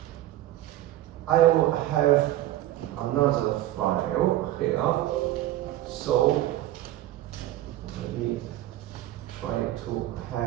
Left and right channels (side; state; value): left; quieter; 14.6 dB